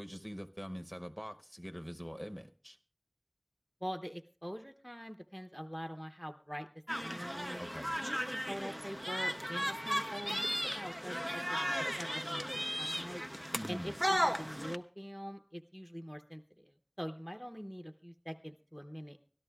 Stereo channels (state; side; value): identical; both; correlation 1.00